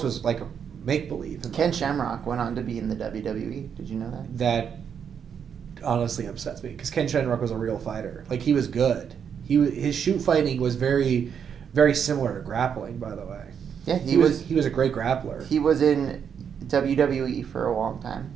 was like a make-believe. Ken Shamrock went on to be in the WWE. Did you know that? That honestly upsets me because Ken Shamrock was a real fighter. Like, he was good. His shoot fighting was very, very similar to grappling, by the way. Yeah, he was a great grappler. He was in WWE for a long time.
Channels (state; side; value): quieter; left; 7.6 dB